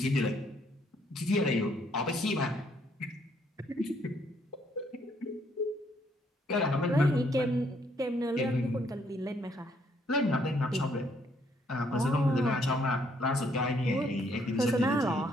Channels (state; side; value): normal; both; correlation 0.69